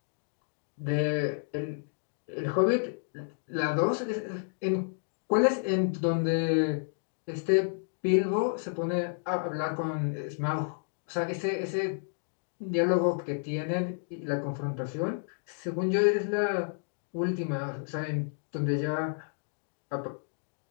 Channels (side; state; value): right; silent; digital silence